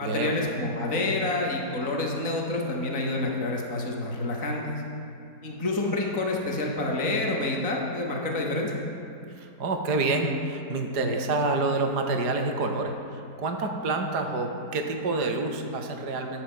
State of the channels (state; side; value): late; left; 4.8 ms